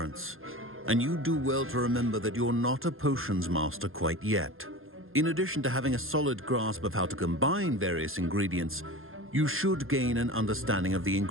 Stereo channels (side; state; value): left; late; 0.60 ms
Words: And you do well to remember that you're not a potions master quite yet. In addition to having a solid grasp of how to combine various ingredients, you should gain an understanding of the